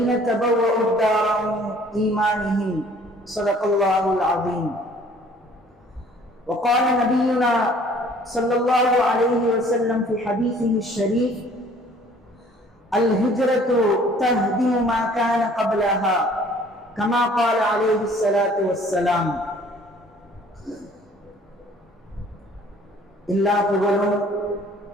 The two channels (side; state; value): both; normal; correlation 0.55